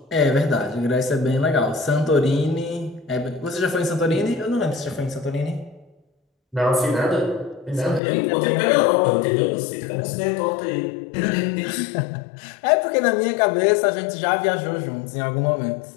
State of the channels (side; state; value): right; drops out; at 8.0 s